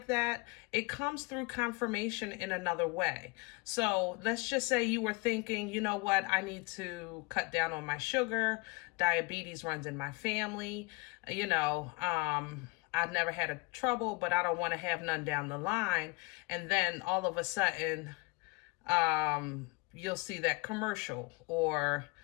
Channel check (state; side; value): quieter; right; 26.8 dB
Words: that, it comes through confirmation in another way. So let's just say you were thinking, you know what, I need to cut down on my sugar. Diabetes runs in my family. You know, I've never had a trouble, but I don't want to have none down the line. And then all of a sudden, you'll see that commercial, or